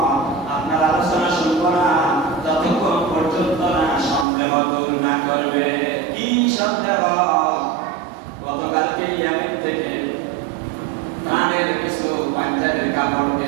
আপনার আলোচনা শুনবো না যতক্ষণ পর্যন্ত না সন্দেহ দূর না করবে। কি সন্দেহ? গতকালকে ইয়ামেন থেকে প্রাণের কিছু পাঞ্জাবের কাপড়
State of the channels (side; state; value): left; drops out; at 4.2 s